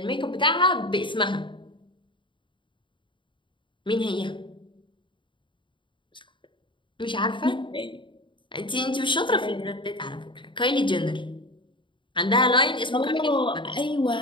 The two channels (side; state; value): right; late; 0.24 ms